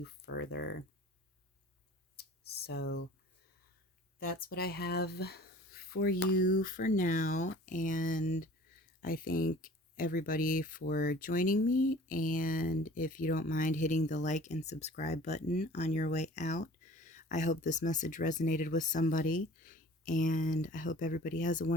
further. So that's what I have for you for now. And I thank everybody for joining me. And if you don't mind hitting the like and subscribe button on your way out, I hope this message resonated with somebody. And I hope everybody has a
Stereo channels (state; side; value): normal; both; correlation 0.46